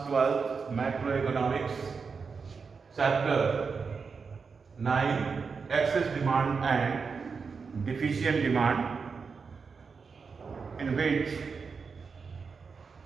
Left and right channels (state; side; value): quieter; left; 5.2 dB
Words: 12 macroeconomics chapter 9 excess demand and deficient demand, in which